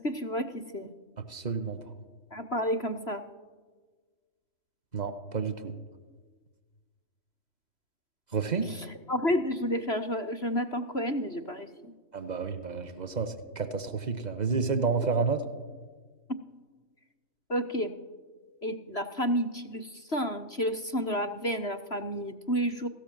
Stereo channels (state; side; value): late; right; 3.0 ms